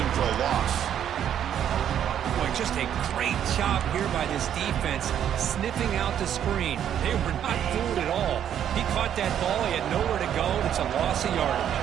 for a loss. Boy, just a great job here by this defense, sniffing out the screen. They were not fooled at all. He caught that ball. He had nowhere to go. It's a loss of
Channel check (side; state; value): left; quieter; 9.8 dB